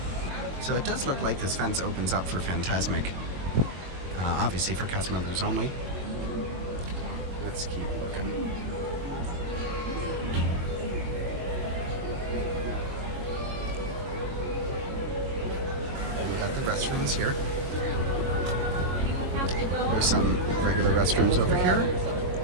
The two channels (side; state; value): left; late; 22 ms